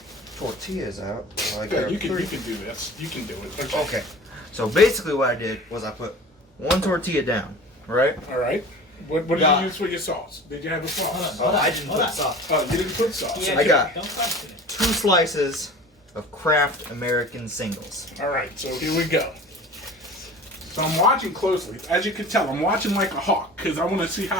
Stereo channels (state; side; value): normal; both; correlation 0.40